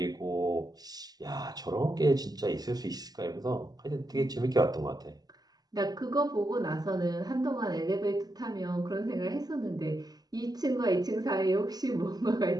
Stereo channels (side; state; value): left; late; 0.19 ms